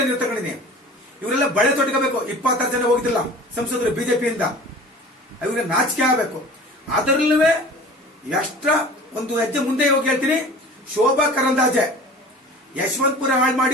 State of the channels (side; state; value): both; normal; correlation 0.41